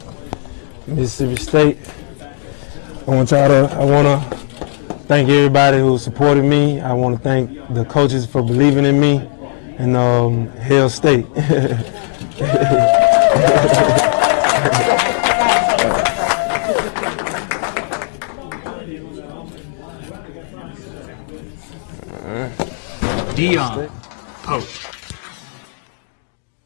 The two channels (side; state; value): right; silent; digital silence